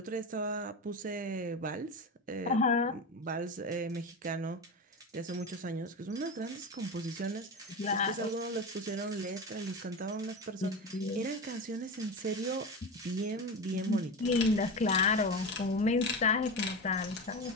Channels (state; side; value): normal; both; correlation 0.23